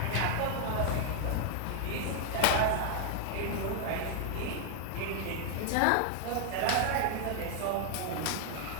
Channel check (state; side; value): different; both; correlation 0.00